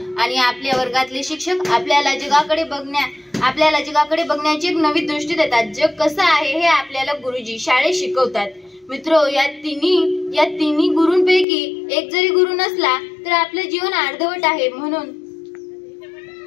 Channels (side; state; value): right; drops out; at 11.5 s